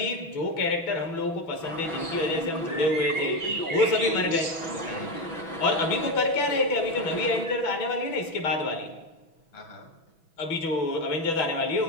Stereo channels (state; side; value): late; right; 6.1 ms